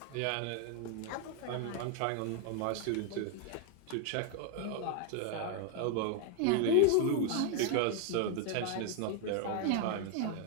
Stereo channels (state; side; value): different; both; correlation 0.00